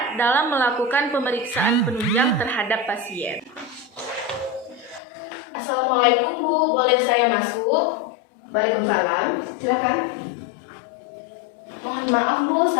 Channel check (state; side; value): drops out; right; at 5.0 s